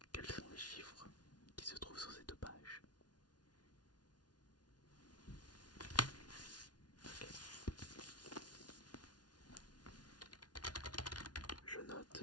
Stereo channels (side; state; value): right; late; 0.69 ms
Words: quels sont les chiffres qui se trouvent sur ces deux pages? Ok. Je note